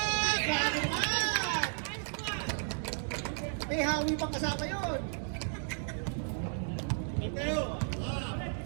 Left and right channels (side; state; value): left; silent; 55 dB below the other